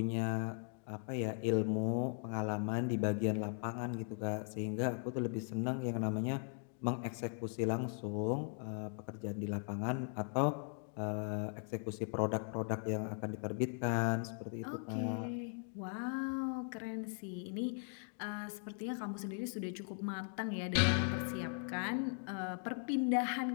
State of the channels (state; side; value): silent; right; 52 dB below the other